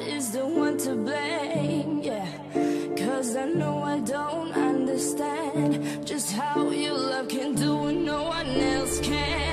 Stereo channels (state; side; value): identical; both; correlation 1.00